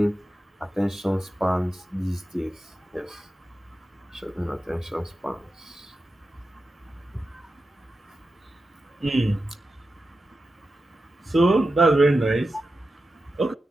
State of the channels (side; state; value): both; normal; correlation 0.91